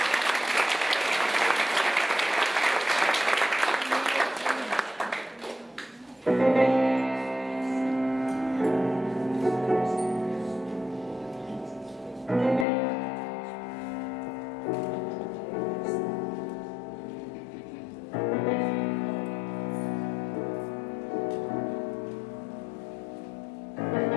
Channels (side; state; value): right; drops out; at 12.7 s